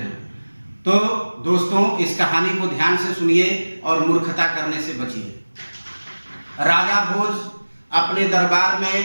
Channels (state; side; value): inverted; both; correlation -1.00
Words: तो दोस्तों, इस कहानी को ध्यान से सुनिए और मूर्खता करने से बचिए। राजा भोज अपने दरबार में